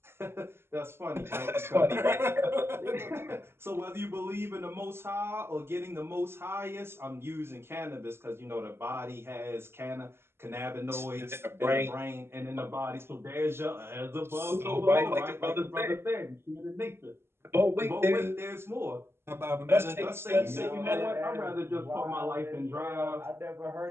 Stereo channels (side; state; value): left; late; 0.12 ms